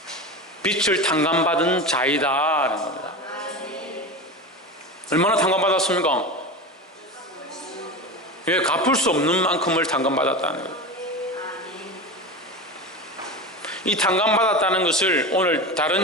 빛을 탕감받은 자이다라는 겁니다. 얼마나 탕감받았습니까? 왜 갚을 수 없는 만큼을 탕감받았다는 거예요. 이 탕감받았다는 것을 오늘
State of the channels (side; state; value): both; normal; correlation 0.26